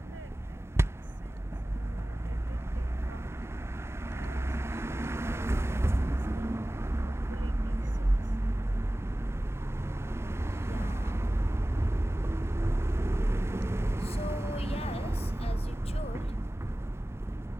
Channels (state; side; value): normal; both; correlation 0.96